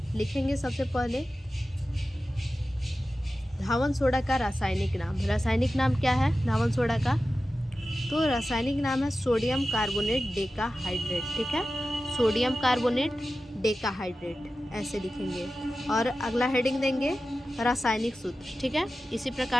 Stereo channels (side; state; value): both; normal; correlation 0.94